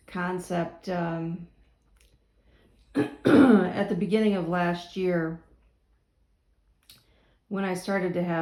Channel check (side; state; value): both; identical; correlation 1.00